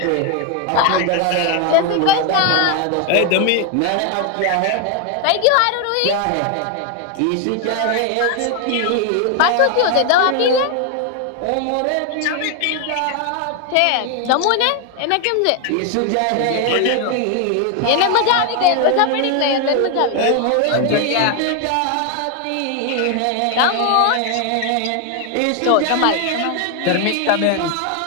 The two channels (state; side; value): different; both; correlation 0.01